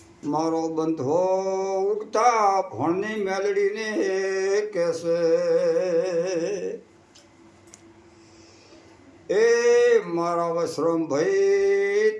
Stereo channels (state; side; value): identical; both; correlation 1.00